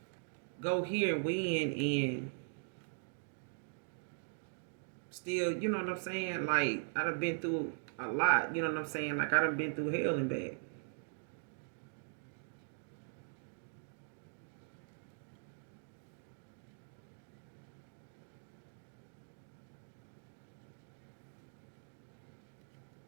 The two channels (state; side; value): silent; left; digital silence